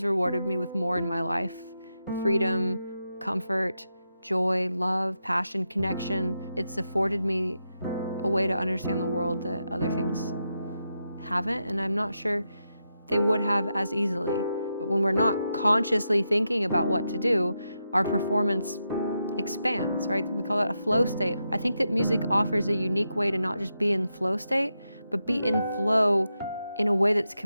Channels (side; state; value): both; inverted; correlation -0.86